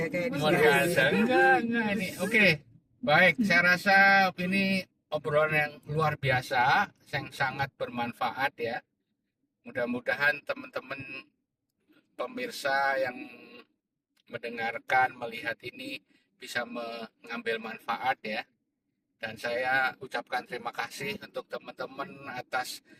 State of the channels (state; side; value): identical; both; correlation 1.00